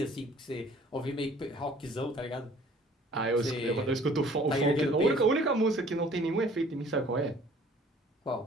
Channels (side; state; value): both; normal; correlation 0.53